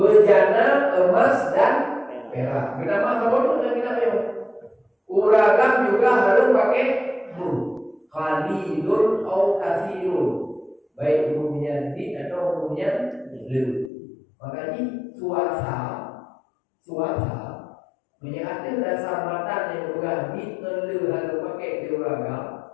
emas dan perak. Kenapa kamu tuh dan kita yo? Uragam juga harus pakai qalilun atau katsirun. Baik umumnya di atau umumnya lu. Makanya suasa menyatakan dasar mata yang bukan di lu harus pakai di uragam.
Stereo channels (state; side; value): drops out; right; at 13.9 s